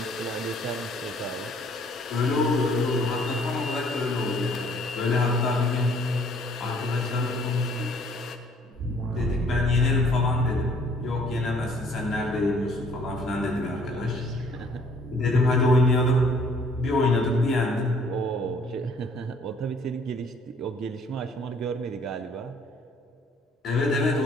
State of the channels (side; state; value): both; normal; correlation 0.59